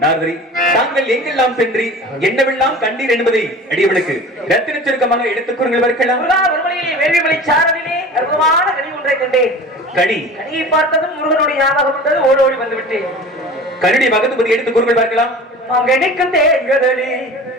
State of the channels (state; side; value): normal; both; correlation 0.38